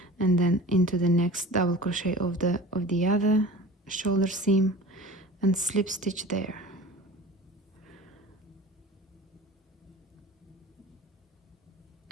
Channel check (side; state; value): both; normal; correlation 0.39